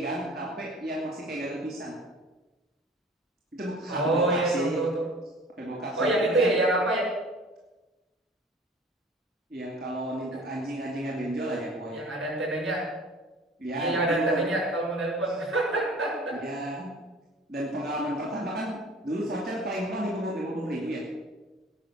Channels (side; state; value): both; normal; correlation 0.46